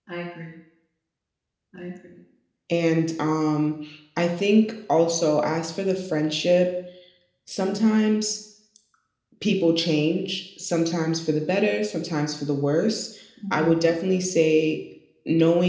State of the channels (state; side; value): identical; both; correlation 1.00